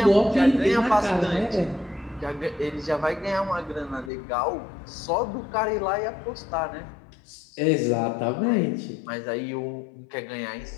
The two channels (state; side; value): drops out; right; at 4.1 s